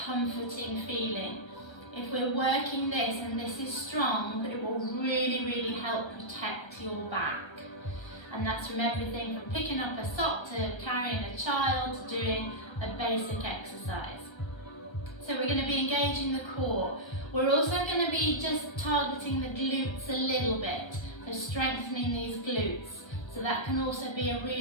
comforting feeling. If we're working this and this is strong, it will really help protect your back. And that's from everything from picking up a sock to carrying a child to doing a basic exercise. So we're going to be engaging the core. We're also going to be just targeting the glutes a little bit, so strengthening these glutes. So that can also be a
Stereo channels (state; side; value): late; right; 1.4 ms